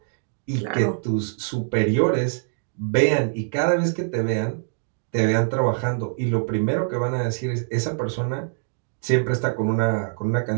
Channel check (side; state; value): left; silent; digital silence